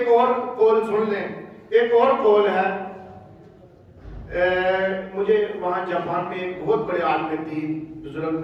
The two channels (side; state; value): both; identical; correlation 1.00